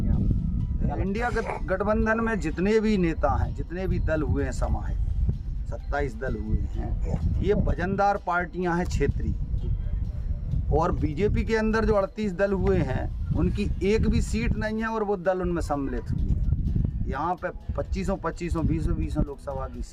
आप? इंडिया गठबंधन में जितने भी नेता हैं, जितने भी दल हुए हैं समाहित, 27 दल हुए हैं, ये वजनदार पार्टियां हैं क्षेत्रीय। और बीजेपी के अंदर जो 38 दल हुए हैं, उनकी एक भी सीट नहीं है और वो दल उनमें सम्मिलित हुए। यहाँ पे 2500 20 लोकसभा की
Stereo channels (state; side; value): identical; both; correlation 1.00